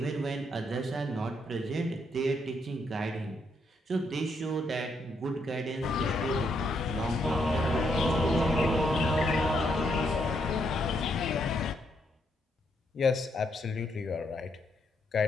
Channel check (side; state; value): both; normal; correlation 0.76